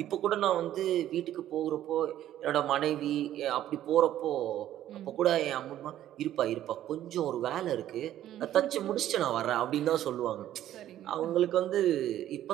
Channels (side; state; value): left; quieter; 12.3 dB